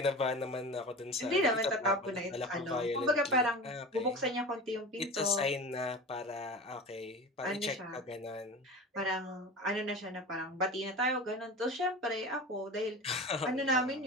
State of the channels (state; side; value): normal; both; correlation 0.32